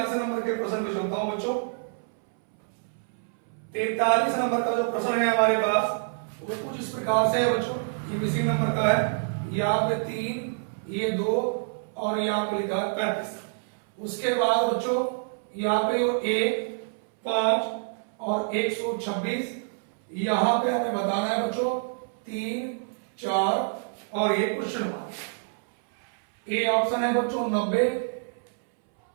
नंबर के प्रश्न पे चलता हूं बच्चों। 43 नंबर का जो प्रश्न है हमारे पास वो कुछ इस प्रकार से है बच्चों, ये इसी नंबर का है। यहाँ पे 3, ये 2 और यहाँ पे लिखा है 35। उसके बाद बच्चों यहाँ पे 1, 5 और 126। यहाँ पे हमें बताना है बच्चों 3, 4 और ये क्वेश्चन मार्क। ए ऑप्शन है बच्चों 90,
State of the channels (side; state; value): left; silent; 60 dB below the other